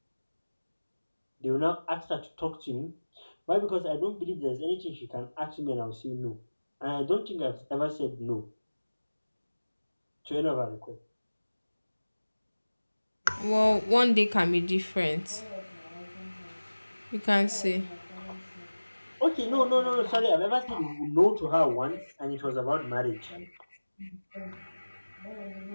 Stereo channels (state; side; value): inverted; both; correlation -1.00